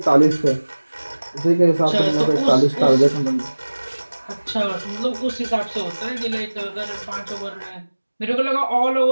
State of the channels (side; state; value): both; inverted; correlation -1.00